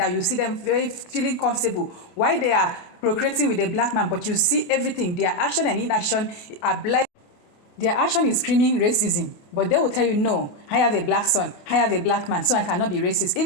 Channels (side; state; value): right; late; 29 ms